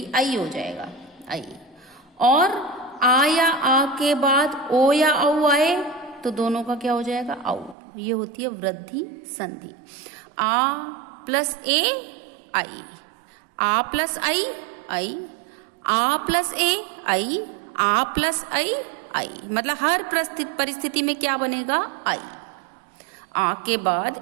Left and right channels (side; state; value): left; drops out; at 7.8 s